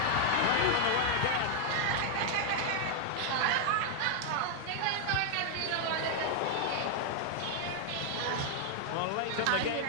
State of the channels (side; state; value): both; different; correlation 0.00